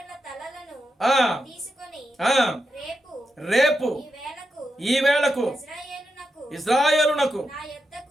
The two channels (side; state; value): both; normal; correlation 0.86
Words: రేపు ఈ వేళకు ఇశ్రాయేలునకు